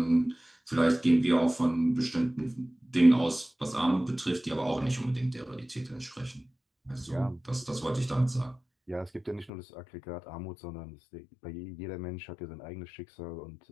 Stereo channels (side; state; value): right; drops out; at 9.5 s